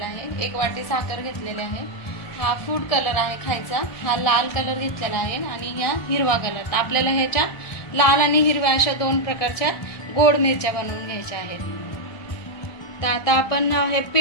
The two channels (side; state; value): right; late; 1.7 ms